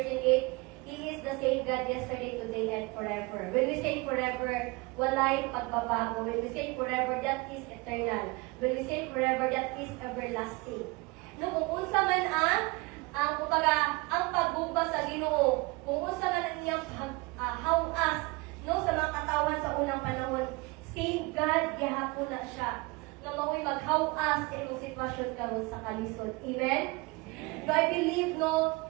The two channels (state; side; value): quieter; left; 25.2 dB